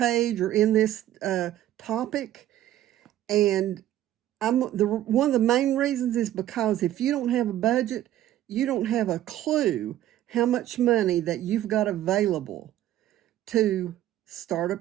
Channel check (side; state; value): left; quieter; 12.9 dB